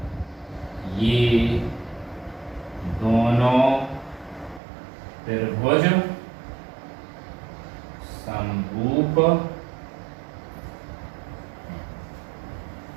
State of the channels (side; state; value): left; drops out; at 4.6 s